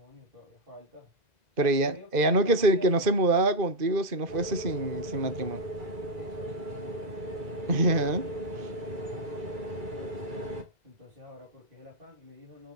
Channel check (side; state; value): left; late; 2.0 ms